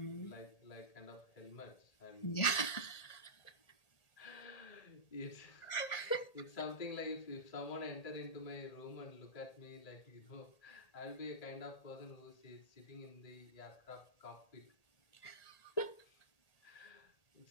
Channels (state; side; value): late; right; 1.8 ms